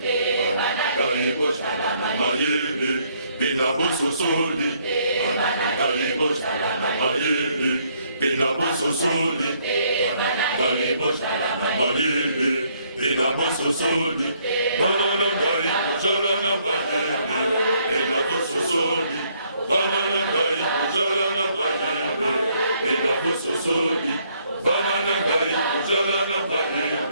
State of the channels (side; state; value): both; inverted; correlation -0.68